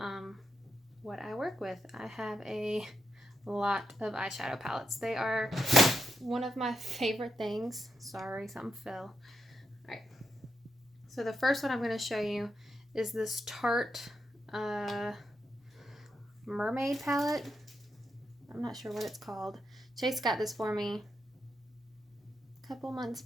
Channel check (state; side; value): normal; both; correlation 0.84